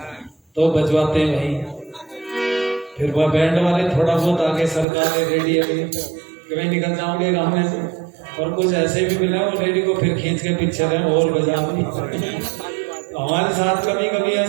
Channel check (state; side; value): drops out; left; at 4.9 s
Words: तो बजवाते हैं वहीं। फिर वह बैंड वाले थोड़ा बहुत आगे सरकार रेडियो में कहीं निकल जाओगे गाँव में से, और कुछ ऐसे भी मिले वो रेडी को फिर खींच के पीछे रहे और बजा। हमारे साथ कभी कभी